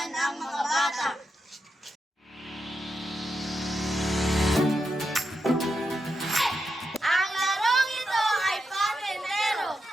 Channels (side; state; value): both; normal; correlation 0.86